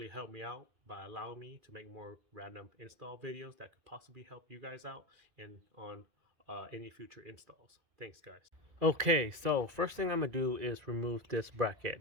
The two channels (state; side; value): late; left; 2.4 ms